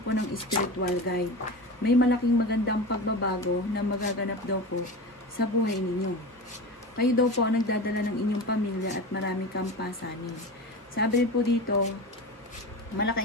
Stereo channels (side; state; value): both; normal; correlation 0.27